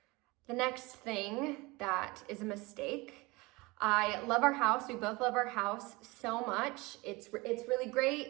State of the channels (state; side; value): quieter; left; 23.7 dB